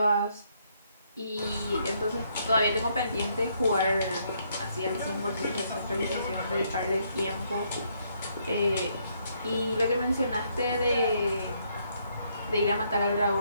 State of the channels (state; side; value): inverted; both; correlation -0.72